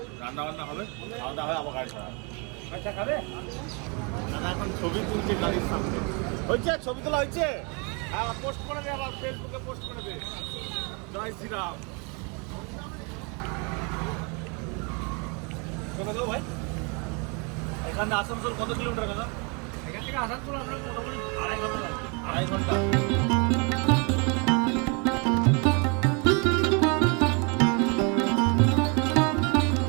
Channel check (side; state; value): left; quieter; 33.1 dB